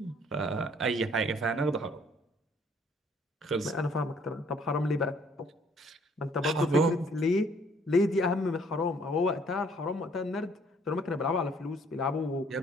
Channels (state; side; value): normal; both; correlation 0.61